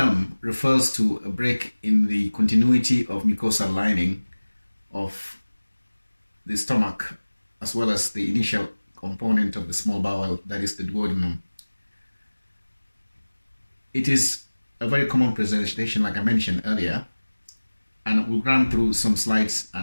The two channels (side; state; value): both; inverted; correlation -1.00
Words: refers to a break in the continuity of mucosal lining of the stomach, as well as the initial component of the small bowel, that is the duodenum. It is a very common presentation, like I mentioned earlier, and we'll run through some slides